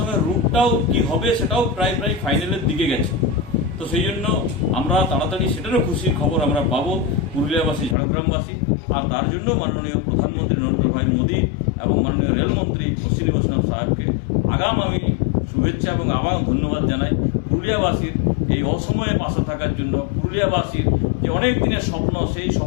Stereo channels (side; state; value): right; drops out; at 8.0 s